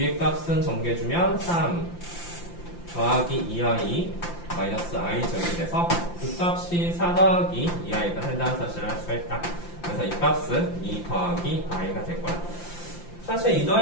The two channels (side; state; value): right; late; 5.8 ms